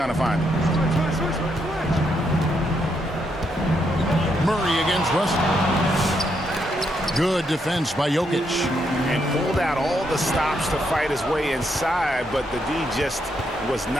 to find him. Murray against Russell. Good defense by Jokic. And pulled out all the stops to fight his way inside, but the D just was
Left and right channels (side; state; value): both; normal; correlation 0.78